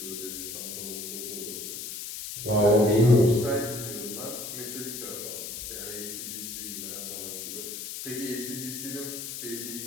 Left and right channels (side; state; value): left; noise; hiss, 7 dB below the sound